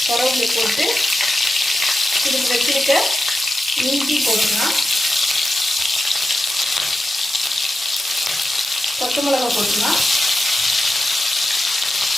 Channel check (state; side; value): normal; both; correlation 0.89